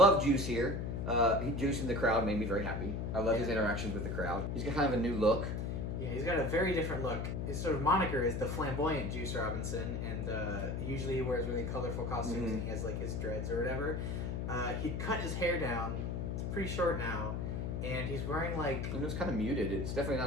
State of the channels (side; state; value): left; noise; hum, 2 dB below the sound